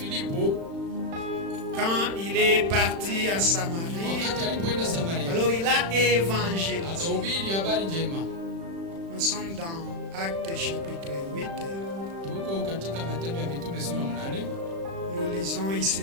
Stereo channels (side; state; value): left; late; 36 ms